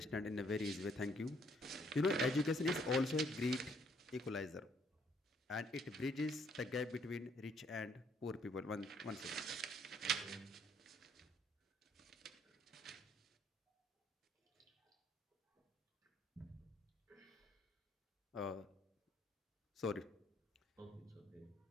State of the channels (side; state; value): both; normal; correlation 0.67